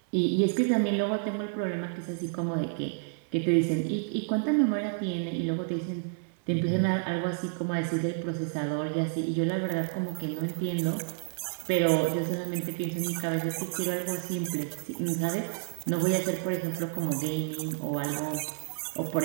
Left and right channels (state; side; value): silent; left; digital silence